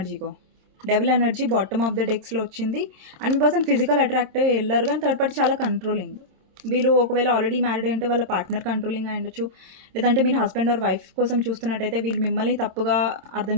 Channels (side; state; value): left; late; 27 ms